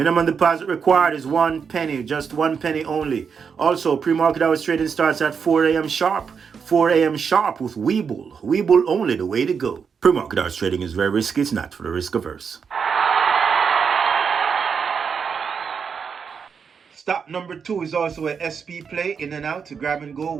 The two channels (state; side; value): quieter; left; 6.3 dB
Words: deposit required is 1 penny, just 1 penny only. Also, pre-market hours trading starts at 4 a.m. sharp. 4 a.m. sharp with Webull. Webull only, the way to go. Pre-market hours trading is very risky. It's not for the risk averse. Stock number 2 is also a SP play, in and out, grab and go,